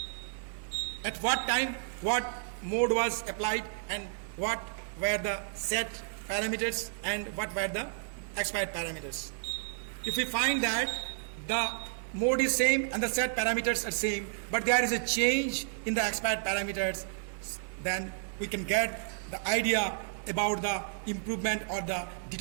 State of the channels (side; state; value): left; silent; 57 dB below the other